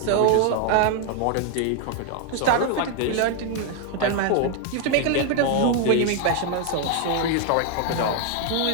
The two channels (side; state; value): both; different; correlation 0.00